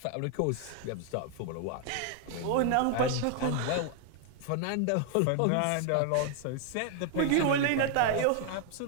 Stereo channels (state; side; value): different; both; correlation 0.00